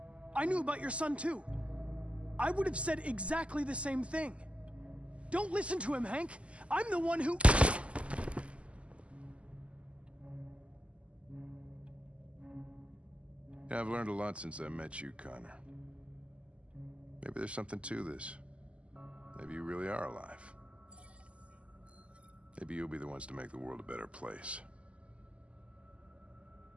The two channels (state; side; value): late; left; 0.058 ms